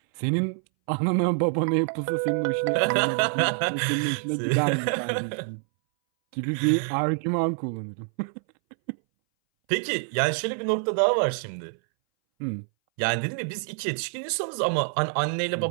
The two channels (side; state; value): left; silent; 60 dB below the other